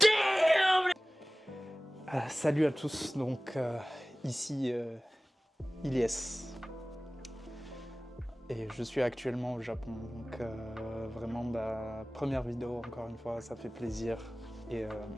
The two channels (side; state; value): both; normal; correlation 0.97